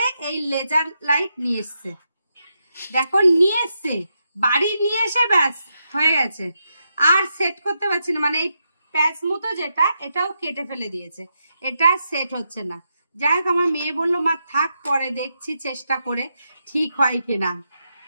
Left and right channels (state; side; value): inverted; both; correlation -0.84